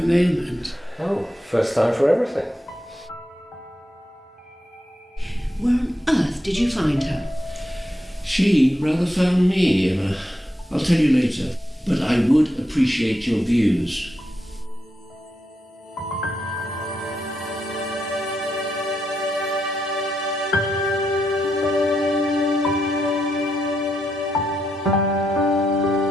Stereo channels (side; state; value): both; normal; correlation 0.83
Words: moment. Oh, first time for everything. Where on earth did you find her? She rather found me, Emma. I'll tell you later, but I would appreciate your views.